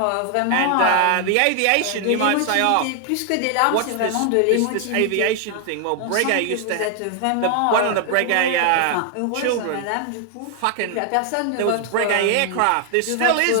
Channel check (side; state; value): both; different; correlation 0.00